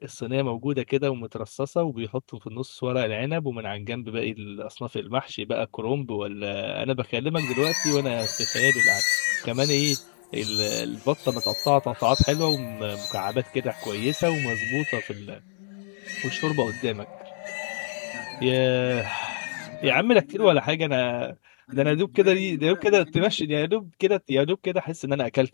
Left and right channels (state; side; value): silent; right; digital silence